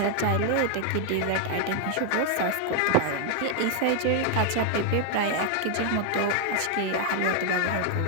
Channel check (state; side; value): different; both; correlation 0.00